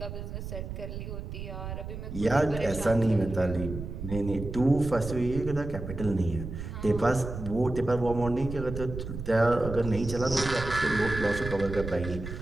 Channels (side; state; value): right; noise; rumble, 8 dB below the sound